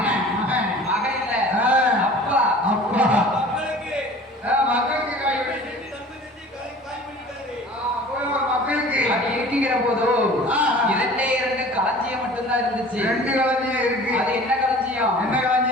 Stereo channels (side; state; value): both; normal; correlation 0.44